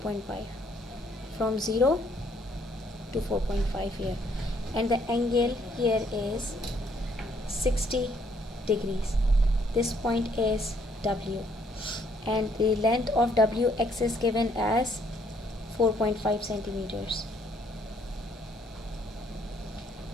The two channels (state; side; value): normal; both; correlation 0.67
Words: from 0 to 4.5 here, and the angle here is 60 degrees. This point is W, and the length of WX is given as 4.5 centimeters.